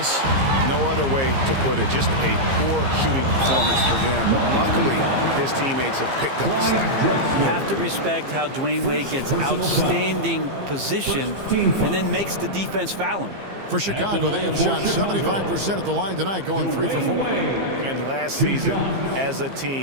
No other way to put it. Just a poor shooting performance for him. But luckily, his teammates have picked up the slack. You have to respect how Dwayne Wade gets outstanding position and then makes the defense foul him. For Chicago, they have shot 75% at the line tonight, going 3 for 4. And last season, as a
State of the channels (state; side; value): late; left; 15 ms